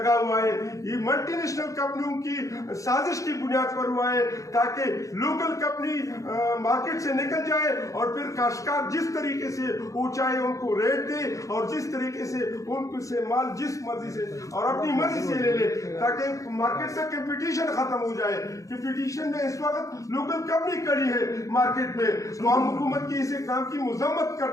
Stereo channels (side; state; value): right; late; 0.16 ms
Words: हुआ है ये मल्टीनेशनल कंपनियों की साजिश की बुनियाद पर हुआ है ताकि लोकल कंपनी मार्केट से निकल जाए और फिर काश्तकार जिस तरीके से वो चाहे उनको रेट दे और जिस तरीके से उनको से माल जिस मर्जी से और अपनी मर्जी से ले ले ताकि मार्केट से कंपटीशन खत्म हो जाए। कंपटीशन में इस वक्त लोकल कंपनी खड़ी है मार्केट में, तो हम हुकूमत की इस काम की मजम्मत